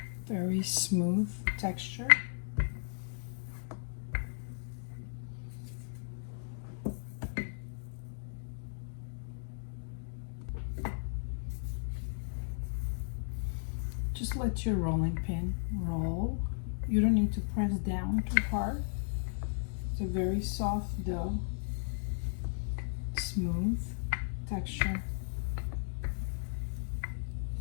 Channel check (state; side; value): silent; right; digital silence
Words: Very smooth texture. Just let your rolling pin roll. You don't need to press down too hard. It's a very soft dough, smooth texture.